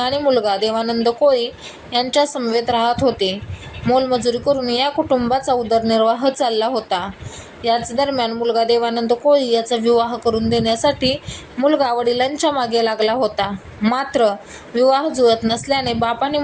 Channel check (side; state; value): both; identical; correlation 1.00